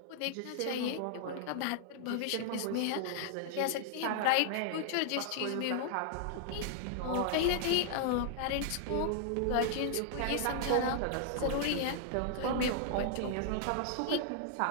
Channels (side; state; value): both; different; correlation -0.01